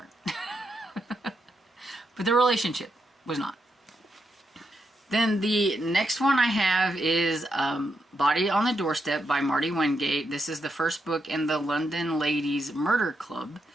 But the relationship was not. Then the next one I have is Body on the Doorstep by Marty Wingate. This is the first book in the London Ladies Murder Club.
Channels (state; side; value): normal; both; correlation 0.82